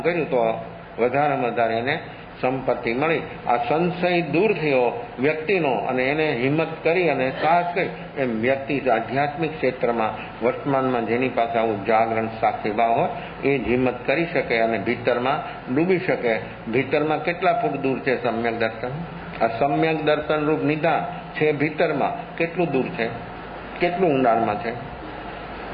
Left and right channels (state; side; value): identical; both; correlation 1.00